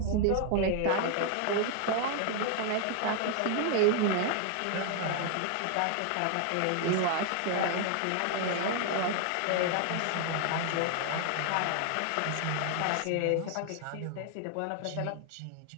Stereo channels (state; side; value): different; both; correlation 0.00